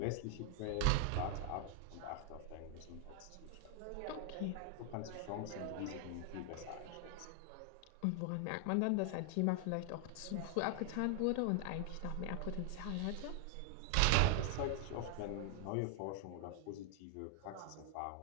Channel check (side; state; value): both; different; correlation 0.00